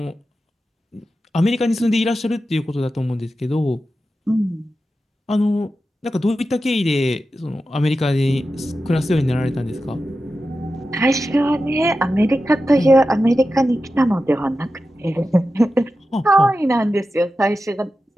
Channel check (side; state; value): both; normal; correlation 0.92